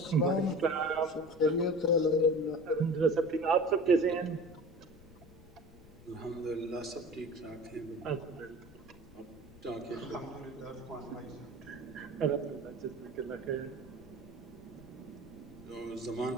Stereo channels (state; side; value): noise; left; rumble, 21 dB below the sound